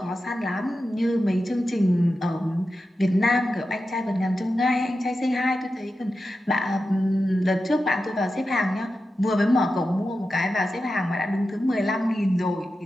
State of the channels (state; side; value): normal; both; correlation 0.91